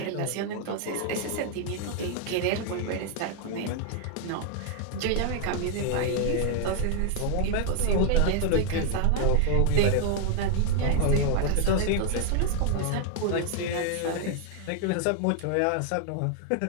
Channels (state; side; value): different; both; correlation 0.00